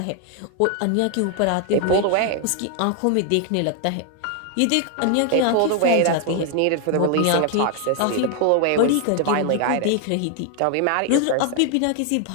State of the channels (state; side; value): different; both; correlation 0.00